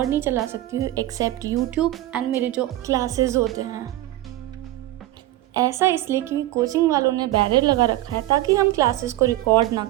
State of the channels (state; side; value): quieter; left; 15.7 dB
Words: नहीं चला सकती हूँ एक्सेप्ट यूट्यूब एंड मेरे जो क्लासेस होते हैं। ऐसा इसलिए क्योंकि कोचिंग वालों ने बैरियर लगा रखा है ताकि हम क्लासेस को रिकॉर्ड ना